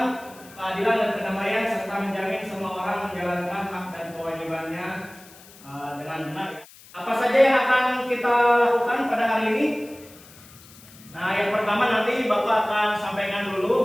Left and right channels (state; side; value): noise; left; hiss, 22 dB below the sound